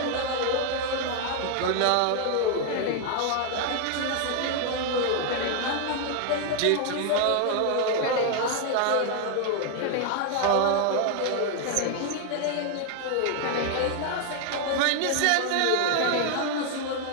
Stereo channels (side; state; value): both; different; correlation 0.00